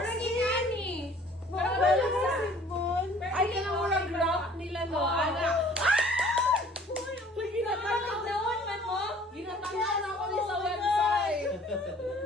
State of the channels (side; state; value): both; normal; correlation 0.53